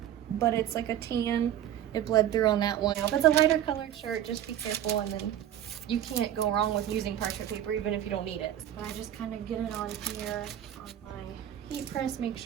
but it's like a tan. It bled through on that one. If it's a lighter colored shirt, just be careful, and then you can't go wrong with using parchment paper even if you don't need it. But I just kind of get it on here on my heat press, make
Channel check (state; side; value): quieter; left; 11.1 dB